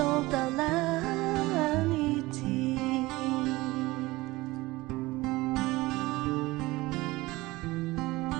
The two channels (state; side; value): quieter; left; 20.2 dB